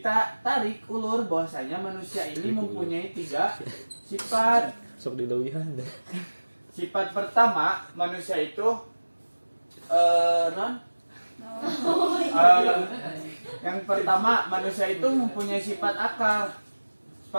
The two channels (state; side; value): inverted; both; correlation -1.00